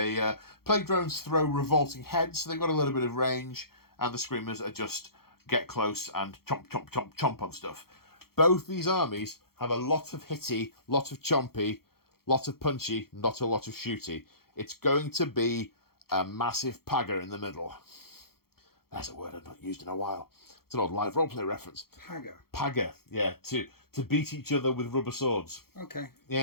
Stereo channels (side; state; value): right; late; 0.94 ms